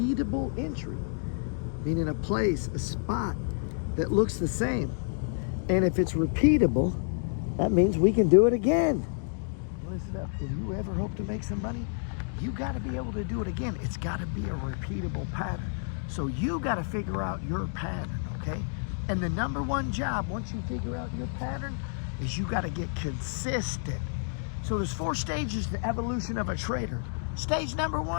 entry, meaning a place, a spot that looks the same. And if it's repeatable, that means we can do it again. Listen up, if you ever hope to make some money, you got to be able to do it again. It's got to be a repeatable pattern. So you got to figure out your pattern, okay? And the number one job, once you figure out your pattern, is you got to get consistent. So there's 4 stages to the evolution of a trader. Stage number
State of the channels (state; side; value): silent; right; digital silence